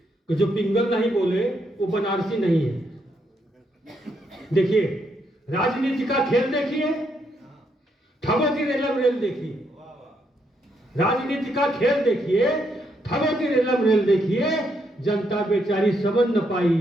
कि जो पिंगल नहीं बोले वो बनारसी नहीं है। देखिए, राजनीति का खेल देखिए, ठगों की रेलम रेल देखिए। राजनीति का खेल देखिए, ठगों की रेलम रेल देखिए, जनता बेचारी समझ न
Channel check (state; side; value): normal; both; correlation 0.77